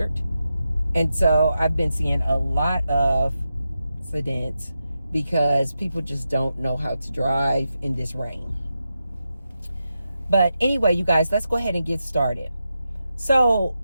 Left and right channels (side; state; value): both; inverted; correlation -0.88